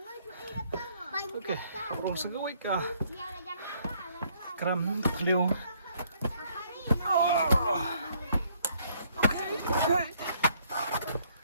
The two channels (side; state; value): both; inverted; correlation -0.66